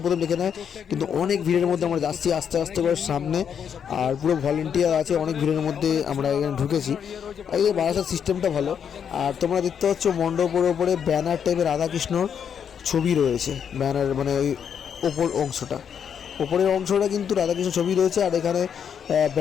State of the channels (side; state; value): right; quieter; 7.8 dB